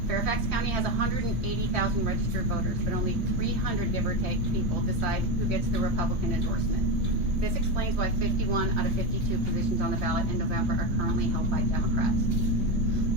Fairfax County has 180,000 registered voters, but only 300, give or take, people decide who gets the Republican endorsement. This explains why 51 out of 52 positions on the ballot in November are currently held by Democrats.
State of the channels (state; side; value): late; left; 3.1 ms